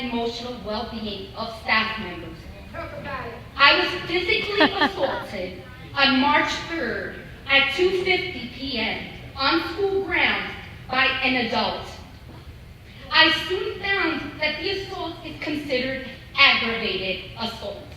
emotional well-being of staff members. I was physically assaulted on March 3rd at 2:50 p.m. on school grounds by an adult. I soon found that the assault is considered aggravated assault.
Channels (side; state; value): both; identical; correlation 1.00